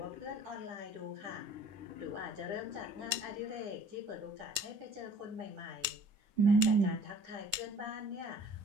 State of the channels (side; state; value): left; late; 9.8 ms